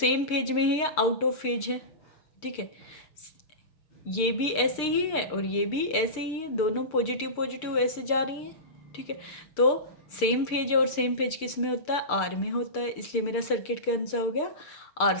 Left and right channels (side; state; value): right; late; 6.7 ms